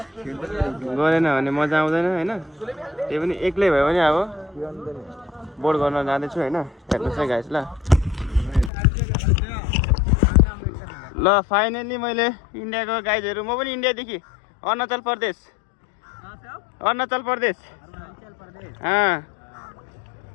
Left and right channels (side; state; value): right; drops out; at 8.7 s